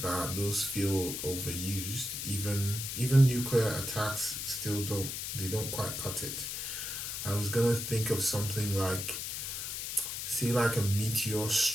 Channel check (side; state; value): left; noise; hiss, 4 dB below the sound